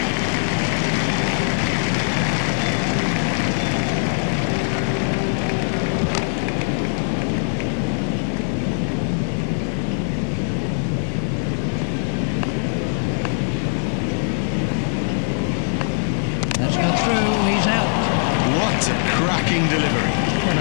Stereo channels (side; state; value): right; silent; 65 dB below the other